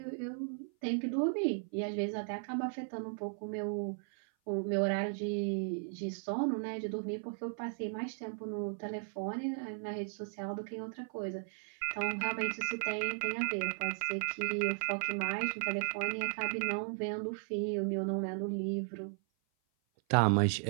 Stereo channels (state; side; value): silent; left; 54 dB below the other